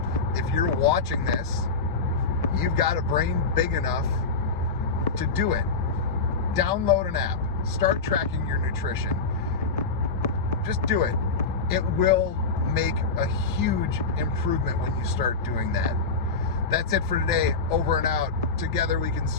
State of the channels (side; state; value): right; quieter; 4.3 dB